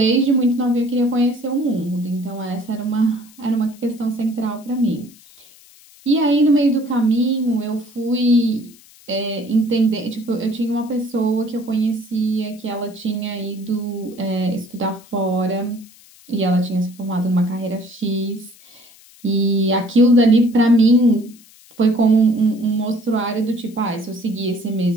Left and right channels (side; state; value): left; noise; hiss, 25 dB below the sound